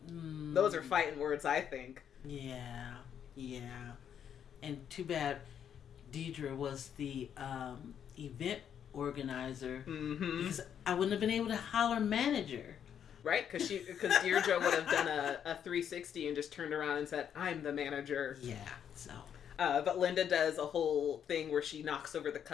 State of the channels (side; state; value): right; quieter; 8.7 dB